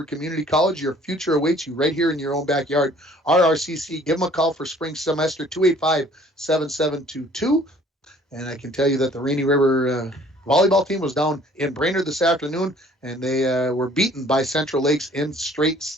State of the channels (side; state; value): both; normal; correlation 0.55